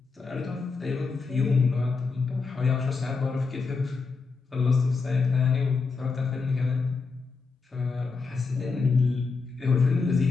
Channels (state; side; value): quieter; right; 4.5 dB